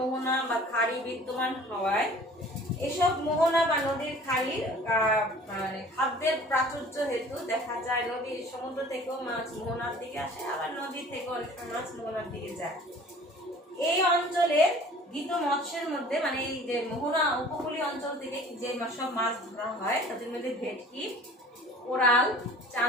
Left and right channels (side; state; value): both; normal; correlation 0.47